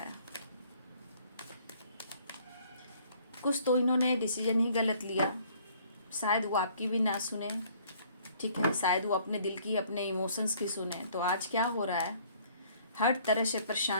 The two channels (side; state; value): both; inverted; correlation -0.59